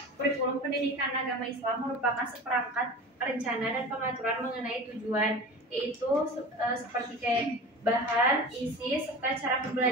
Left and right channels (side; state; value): both; normal; correlation 0.34